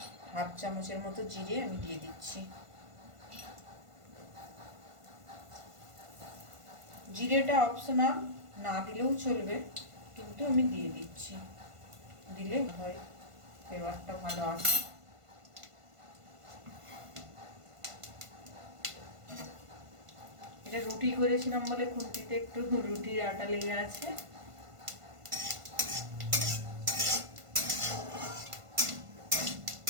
হাফ চামচের মতো জিরে আমি দিয়ে দিচ্ছি। জিরেটা অপশনাল, না দিলেও চলবে, কিন্তু আমি দিয়ে দিচ্ছি, দিলে হয় ফ্লেভারটা ভালো আসে। এটা রুটি করেছিলাম বলে খুন্তিতে একটু রুটির আটা লেগে আছে।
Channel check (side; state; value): left; late; 1.5 ms